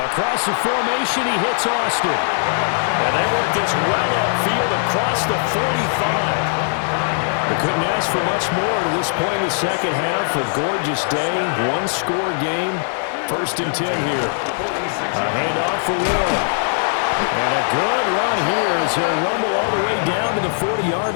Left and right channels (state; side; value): silent; right; 66 dB below the other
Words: the formation, he hits Austin. And they work this well upfield across the 45. They couldn't ask for much more to this point in the second half. A gorgeous day, one-score game. 1st and 10 here. A handoff for Warren. And a good run here as he'll rumble all the way down to the